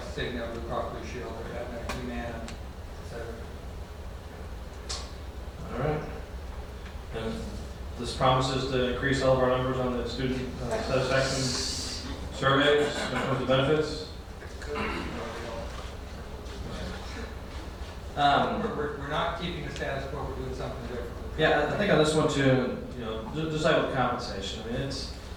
Cigna, Blue Cross Blue Shield, or Aetna, Humana, etc. All right. And this promises to increase all of our numbers on the student satisfaction surveys when it comes to benefits. We're not keeping the status quo. We're doing something different. Yeah, I think on this one too, just like with compensation, I mean,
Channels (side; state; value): both; identical; correlation 1.00